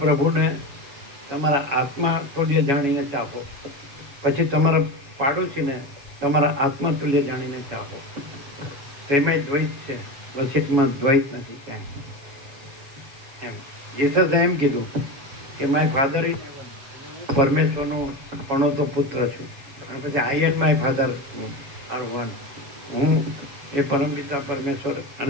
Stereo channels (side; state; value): left; late; 7.1 ms